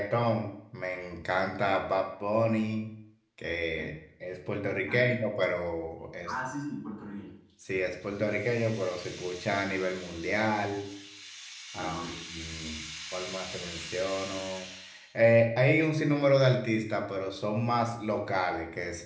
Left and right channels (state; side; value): identical; both; correlation 1.00